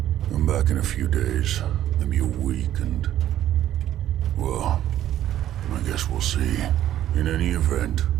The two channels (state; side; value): quieter; left; 12.1 dB